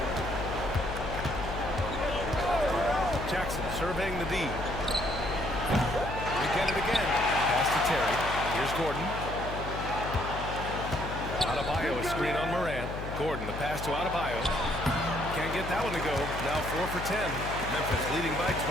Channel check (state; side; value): noise; left; hum, 7 dB below the sound